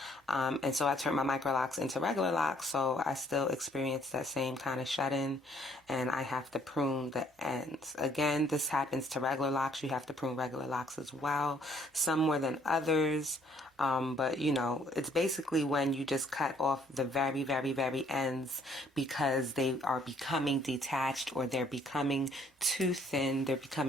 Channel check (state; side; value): normal; both; correlation 0.63